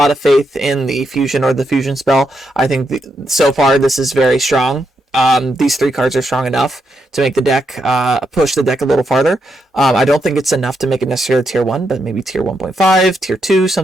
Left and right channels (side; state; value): both; normal; correlation 0.81